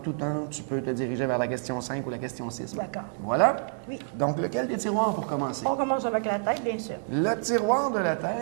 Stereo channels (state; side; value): silent; left; digital silence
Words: temps, tu peux te diriger vers la question 5 ou la question 6. D'accord. Voilà. Oui. Donc, lequel des tiroirs pour commencer? On commence avec la tête, bien sûr. Le tiroir de la